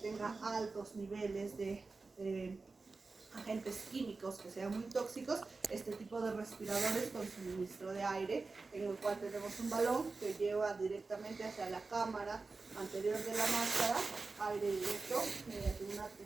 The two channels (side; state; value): left; quieter; 3.9 dB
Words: altos niveles de agentes químicos que sean muy tóxicos, este tipo de respiradores con suministro de aire, en el cual tenemos un balón que lleva directamente hacia la cámara anterior de la máscara, aire directo mediante una